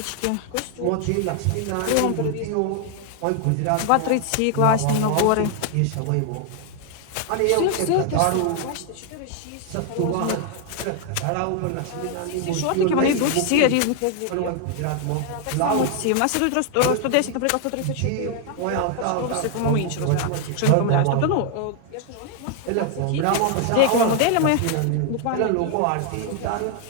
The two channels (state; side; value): different; both; correlation 0.00